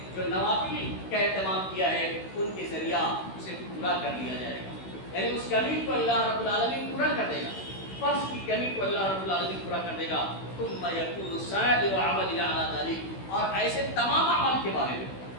جو نوافل کا اہتمام کیا ہے، ان کے ذریعہ اسے پورا کر لیا جائے گا. یعنی اس کمی کو اللہ رب العالمین پورا کر دے گا، فرض کی کمی کو اللہ رب العالمین پورا کر دے گا. ثُمَّ يَكُونُ سَائِرُ عَمَلِهِ عَلَىٰ ذَلِكَ اور ایسے تمام اعمال کے بارے میں،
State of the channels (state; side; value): late; right; 16 ms